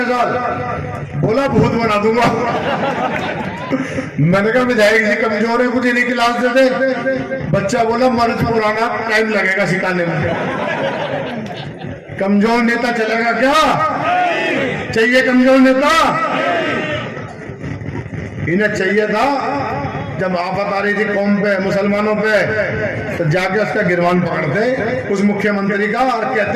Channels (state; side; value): identical; both; correlation 1.00